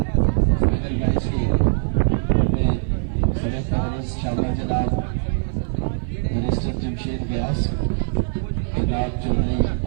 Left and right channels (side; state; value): left; silent; 56 dB below the other